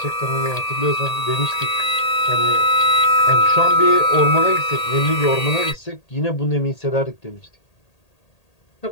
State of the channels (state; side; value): late; right; 1.8 ms